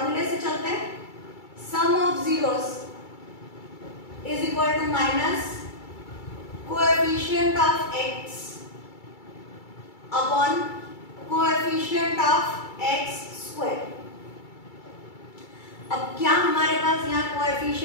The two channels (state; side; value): late; right; 2.3 ms